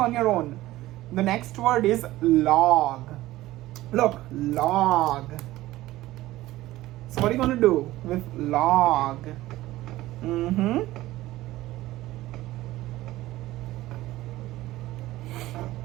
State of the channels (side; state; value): left; quieter; 16.6 dB